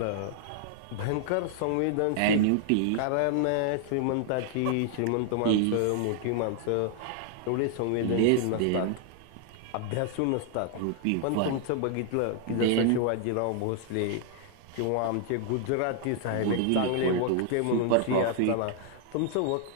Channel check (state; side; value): different; both; correlation 0.00